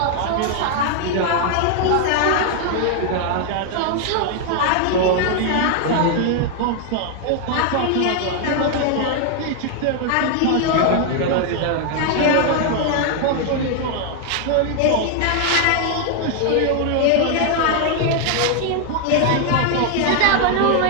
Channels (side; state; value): both; different; correlation 0.00